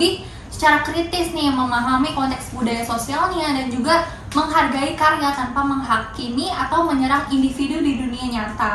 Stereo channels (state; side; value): identical; both; correlation 1.00